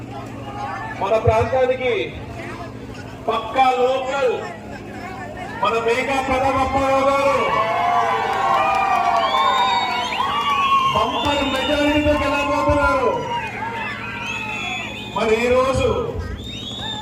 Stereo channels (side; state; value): both; identical; correlation 1.00